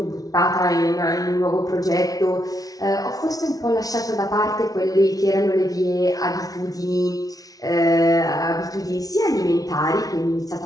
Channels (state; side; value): late; right; 0.18 ms